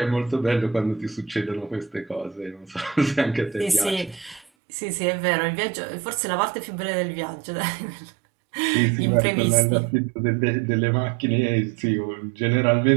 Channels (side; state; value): left; drops out; at 4.5 s